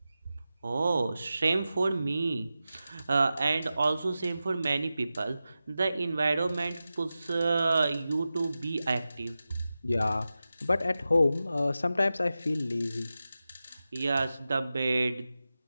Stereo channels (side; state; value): both; inverted; correlation -0.93